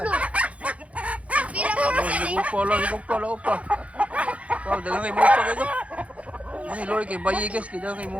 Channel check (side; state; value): left; late; 0.064 ms